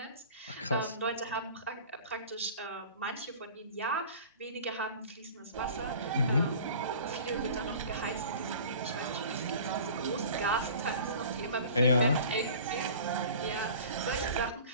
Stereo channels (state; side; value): inverted; both; correlation -0.43